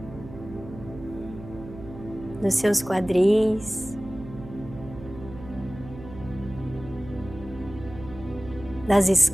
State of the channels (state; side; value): noise; right; hum, 14 dB below the sound